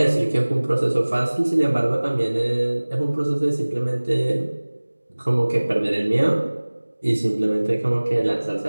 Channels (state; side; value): inverted; both; correlation -1.00